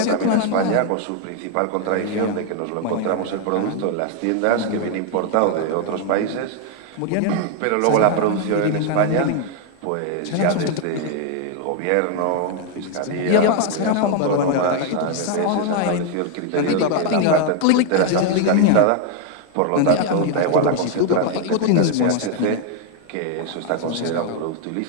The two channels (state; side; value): different; both; correlation 0.01